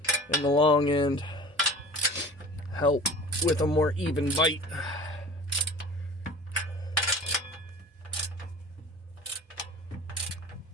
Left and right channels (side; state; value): both; normal; correlation 0.41